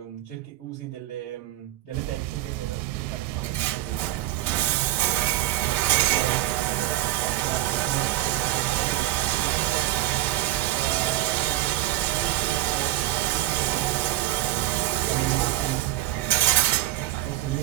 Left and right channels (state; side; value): quieter; left; 15.6 dB